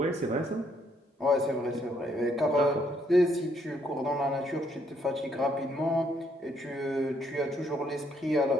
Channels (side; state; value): both; normal; correlation 0.71